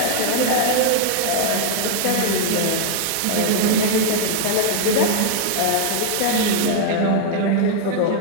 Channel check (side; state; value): both; different; correlation 0.00